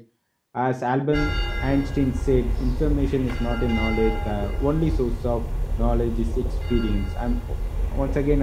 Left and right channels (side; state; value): both; identical; correlation 1.00